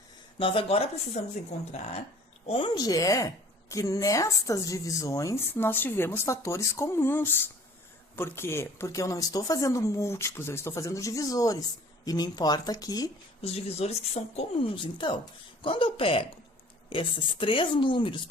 Nós agora precisamos encontrar onde é que nestas divisões nós tivemos fatores comuns. Por quê? Porque eu não estou fazendo múltiplos, eu estou fazendo divisores. E me importa aqui os divisores que são comuns. Então, quando eu pego esses 3 números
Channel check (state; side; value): normal; both; correlation 0.50